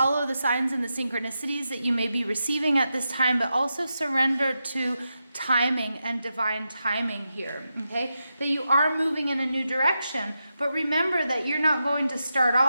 the signs and the synchronicities that you may be receiving at this time, but also surrender to timing and divine timing here, okay? That you are moving in a new direction, but remember that you're not going to start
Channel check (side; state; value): both; inverted; correlation -0.88